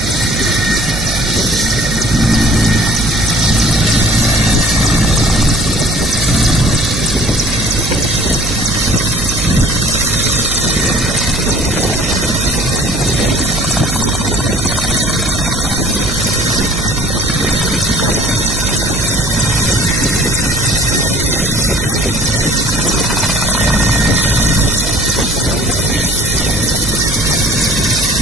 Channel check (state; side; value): noise; right; hum, 6 dB below the sound